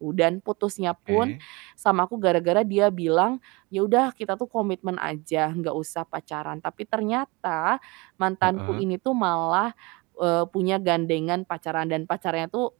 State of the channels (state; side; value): quieter; left; 25.7 dB